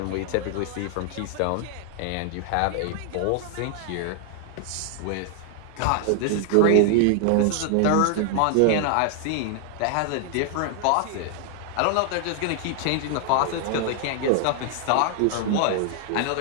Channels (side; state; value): both; different; correlation 0.00